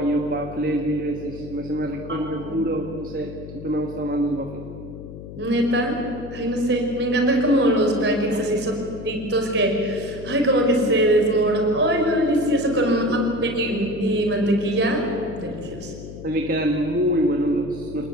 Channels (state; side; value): noise; left; hum, 13 dB below the sound